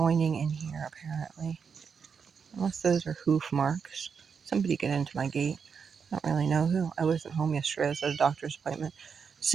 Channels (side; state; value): left; quieter; 6.3 dB